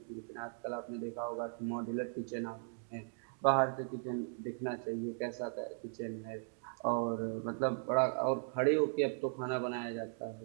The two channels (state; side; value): silent; left; digital silence